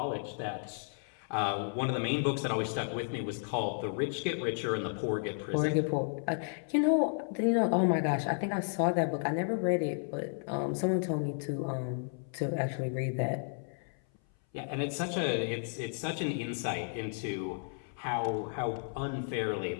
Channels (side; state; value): right; silent; 56 dB below the other